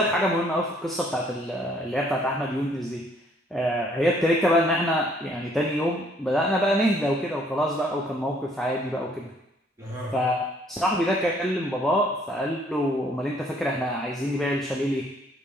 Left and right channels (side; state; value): both; normal; correlation 0.63